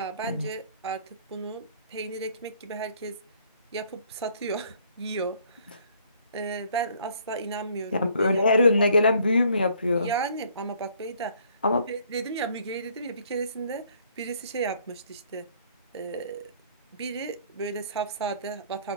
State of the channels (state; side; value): inverted; both; correlation -0.61